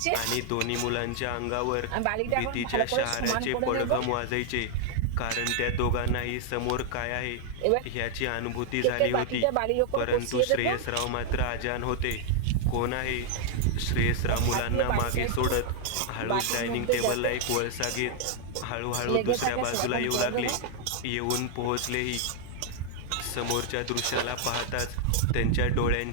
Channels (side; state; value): both; different; correlation 0.00